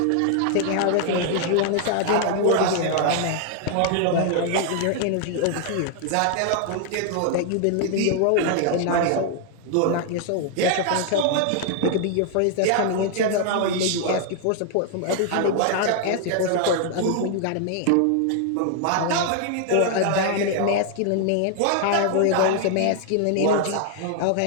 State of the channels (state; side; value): different; both; correlation 0.00